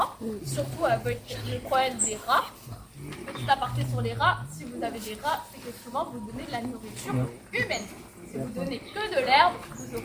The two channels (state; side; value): identical; both; correlation 1.00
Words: surtout avec le problème des rats. Petit aparté sur les rats, si vous avez des rats, c'est que souvent vous donnez de la nourriture humaine. Si vous donnez que de l'herbe, vous